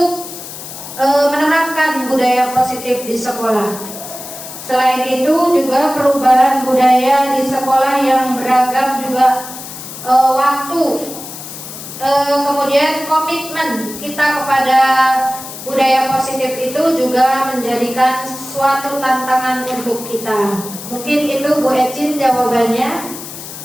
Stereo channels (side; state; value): left; noise; hiss, 12 dB below the sound